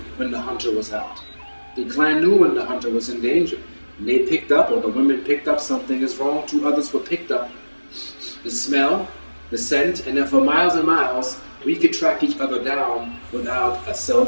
when the hunter was out. The clan knew when the hunter was in danger. And they picked up, or the women picked up something is wrong. 2 others were picked up. The smell, the scent, and then for miles and miles, we could track each other down without a cell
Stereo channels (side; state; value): both; inverted; correlation -1.00